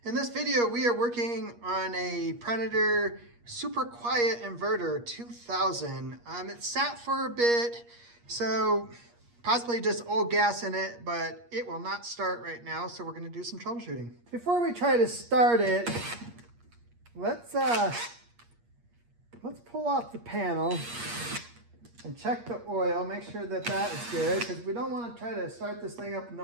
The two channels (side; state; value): left; late; 8.5 ms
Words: In this video, we are working on a Predator super quiet inverter 2000. It sat for a bit, so possibly just old gas in it, but it will not start right now, so we're gonna do some troubleshooting. Before we try to start it, let's pull off the panel and check the oil, make sure that that is good, because we don't want to try to start this thing up with